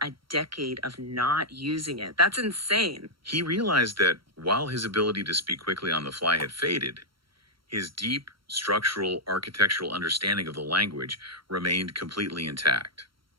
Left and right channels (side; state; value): left; late; 0.74 ms